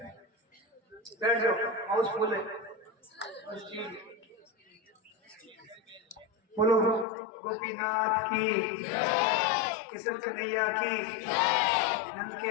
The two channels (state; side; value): drops out; right; at 7.1 s